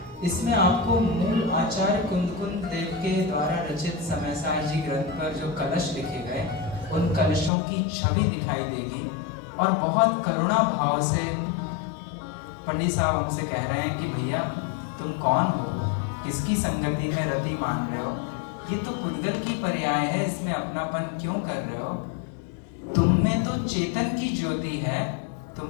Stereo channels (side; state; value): right; drops out; at 7.5 s